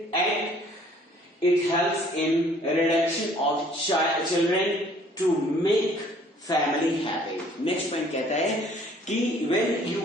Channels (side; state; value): both; normal; correlation 0.57